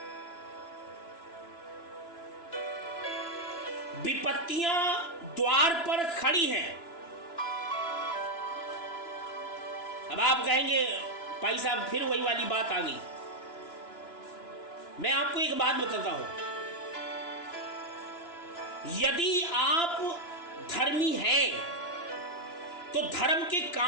विपत्तियां द्वार पर खड़ी हैं। अब आप कहेंगे भाई साहब फिर वही वाली बात आ गई। मैं आपको एक बात बताता हूं, यदि आप धर्मी हैं तो धर्म के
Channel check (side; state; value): right; late; 2.9 ms